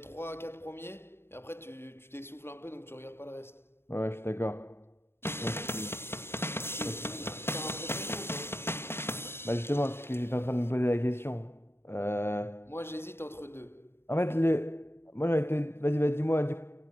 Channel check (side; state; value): right; late; 0.11 ms